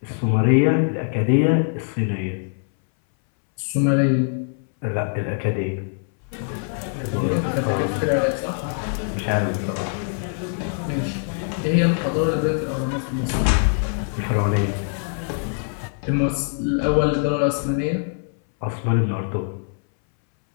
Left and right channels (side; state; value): right; silent; 61 dB below the other